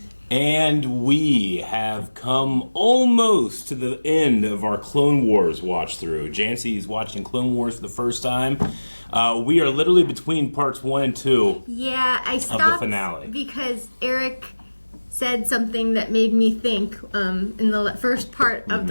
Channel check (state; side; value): inverted; both; correlation -1.00